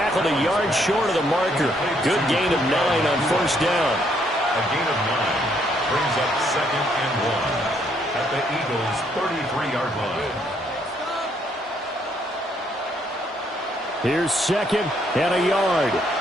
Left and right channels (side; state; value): both; normal; correlation 0.70